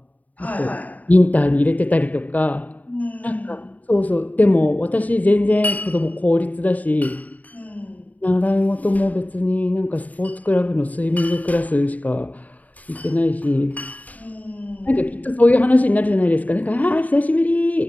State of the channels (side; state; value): right; late; 0.074 ms